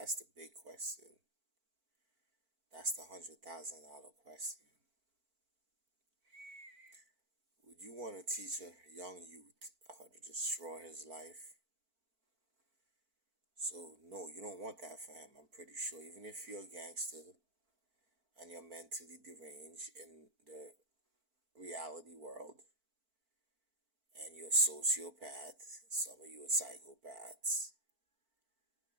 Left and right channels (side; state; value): left; late; 4.5 ms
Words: the big question. That's the $100,000 question. Would you want to teach a young youth how to destroy his life? So no, you don't want that for him. I'm pretty sure. Even if you're a gangster and you're mentally deranged in the reality world, and you're a sociopath, some of you are psychopaths,